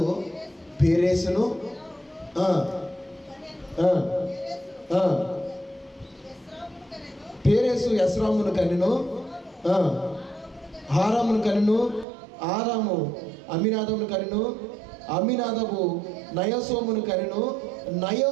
పేరేసును, పేరేసు ఎస్రామును కనెను, హారామును కనెను, ఆరాము అమినాదమును కనెను, అమినాదము నయసోమును కనెను,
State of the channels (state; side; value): drops out; left; at 12.1 s